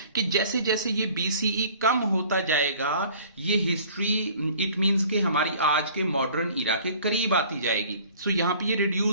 कि जैसे जैसे ये BCE कम होता जाएगा, ये हिस्ट्री इट मींस कि हमारी आज के मॉडर्न इरा के करीब आती जाएगी। सो यहां पे ये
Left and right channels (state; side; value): inverted; both; correlation -0.50